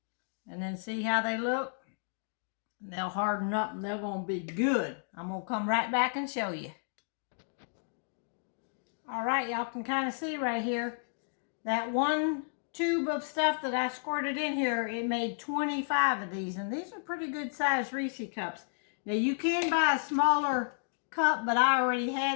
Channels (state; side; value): silent; right; digital silence